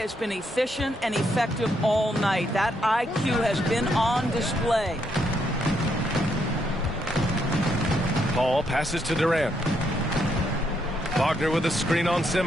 been efficient and effective all night. That IQ has been on display. Paul passes to Durant. Wagner with a screen on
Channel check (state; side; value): normal; both; correlation 0.76